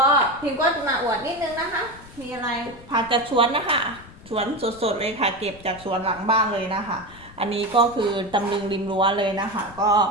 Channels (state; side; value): noise; left; rumble, 20 dB below the sound